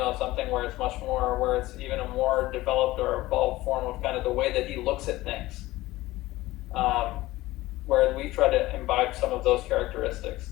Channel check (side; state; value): right; quieter; 18.0 dB